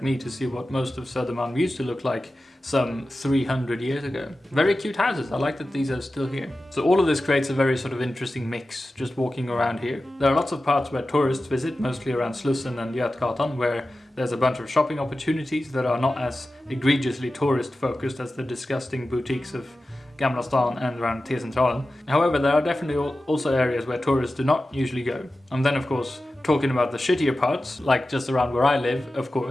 me to see what most of Södermalm used to look like some 300 years ago. Very cute houses, I like that these are still here. So all of this creates a very sort of interesting mix, just walking around here. There are lots of parts where tourists visit, mostly around Slussen and Götgatan, where there's a bunch of shopping opportunities that are not as egregiously tourist focused as the disgusting boutiques of Gamla stan and around T-centralen. However, there are definitely also areas where tourists do not usually go. And then of course, talking about the shittier parts, like just around where I live, of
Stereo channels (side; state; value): both; normal; correlation 0.94